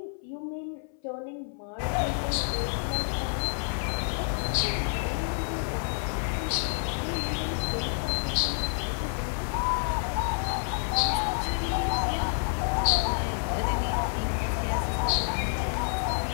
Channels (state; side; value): silent; right; 59 dB below the other